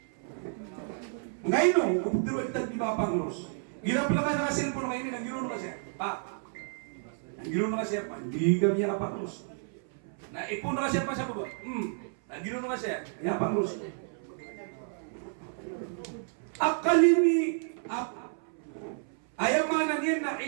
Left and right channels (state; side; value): silent; left; 57 dB below the other